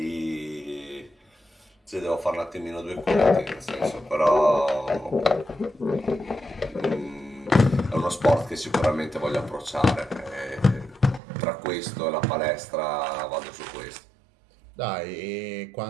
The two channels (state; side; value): drops out; left; at 11.2 s